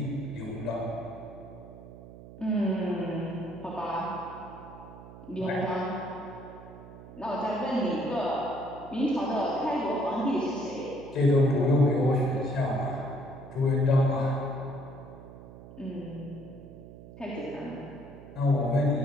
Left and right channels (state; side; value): noise; right; hum, 16 dB below the sound